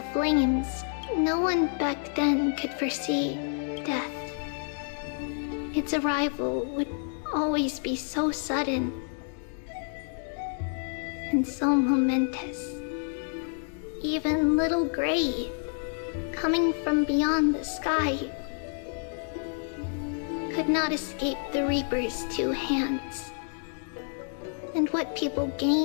flames, no one back then could foresee death. Its arrival would always be so sudden and so momentous. Even little Gray, coming from beyond the sky, could not escape the Reaper's two hands. And what people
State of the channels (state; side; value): silent; right; 59 dB below the other